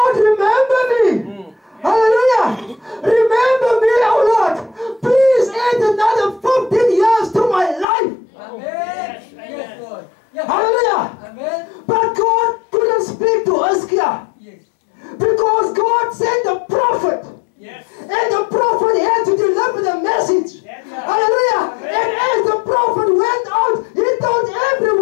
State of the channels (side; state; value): right; drops out; at 7.9 s